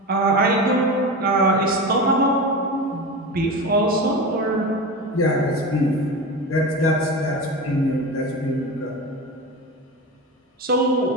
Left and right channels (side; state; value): both; normal; correlation 0.26